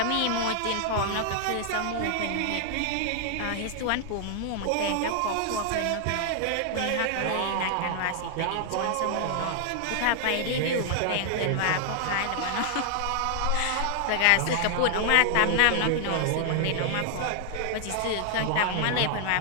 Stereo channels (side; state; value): both; different; correlation 0.00